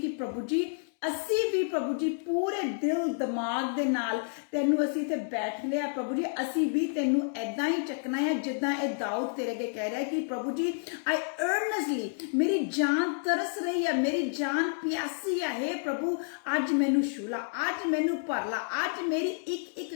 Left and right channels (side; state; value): right; silent; digital silence